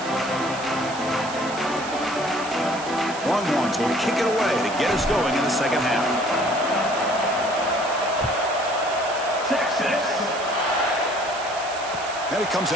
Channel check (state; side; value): noise; right; hiss, 13 dB below the sound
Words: Longhorns will kick it away to get us going in the second half. Texas. And it comes